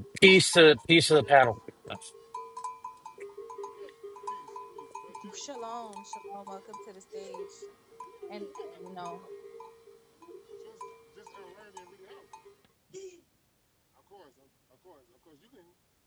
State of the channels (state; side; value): identical; both; correlation 1.00